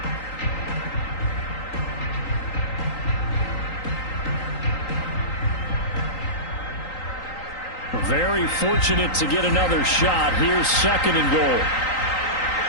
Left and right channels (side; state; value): right; late; 3.8 ms